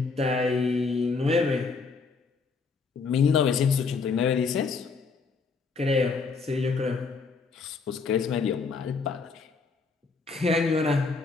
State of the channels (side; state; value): right; quieter; 4.7 dB